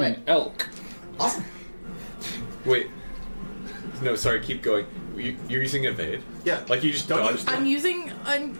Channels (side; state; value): both; inverted; correlation -1.00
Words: an elk. Awesome. Wait. No, sorry, keep going. You're using evade? Yeah. Like you just dodged I'm using